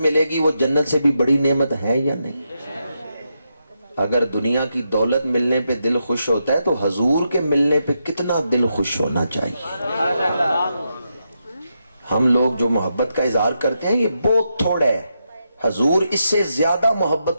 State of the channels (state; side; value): inverted; both; correlation -0.84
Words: گی وہ جنت سے بھی بڑی نعمت ہے یا نہیں؟ اگر دنیا کی دولت ملنے پہ دل خوش ہوتا ہے تو حضور کے ملنے پہ کتنا دل خوش ہونا چاہیے؟ ہم لوگ جو محبت کا اظہار کرتے ہیں یہ بہت تھوڑا ہے، حضور اس سے زیادہ